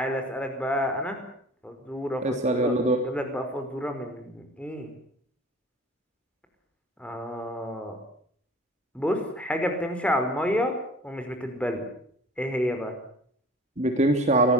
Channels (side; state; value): both; normal; correlation 0.44